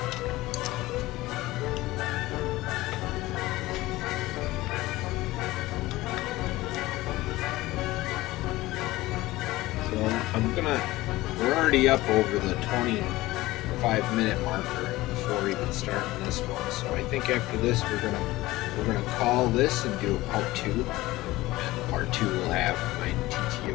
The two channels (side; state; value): right; quieter; 18.4 dB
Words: So we're already up over the 25-minute marker before even starting this one. So I think after this we're gonna call this and do a part 2. And part 2 will have my